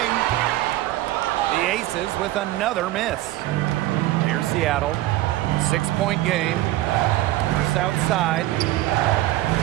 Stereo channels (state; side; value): quieter; left; 16.0 dB